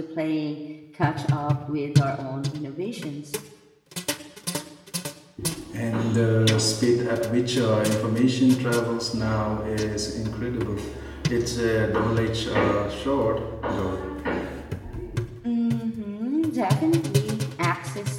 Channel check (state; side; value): identical; both; correlation 1.00